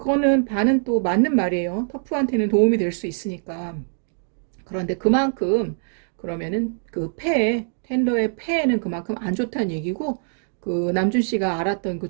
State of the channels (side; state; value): left; silent; 62 dB below the other